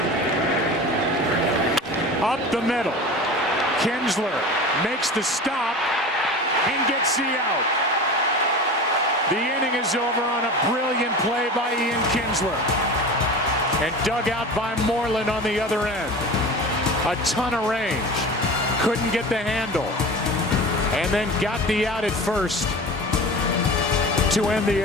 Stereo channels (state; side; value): normal; both; correlation 0.33